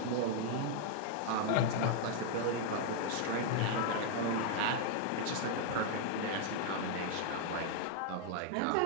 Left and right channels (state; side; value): different; both; correlation 0.00